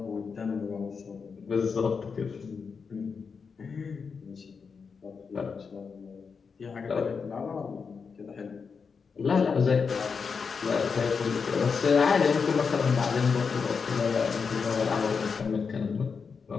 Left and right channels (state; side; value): quieter; right; 5.6 dB